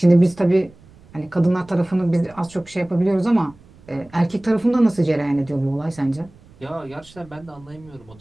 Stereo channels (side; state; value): right; noise; rumble, 25 dB below the sound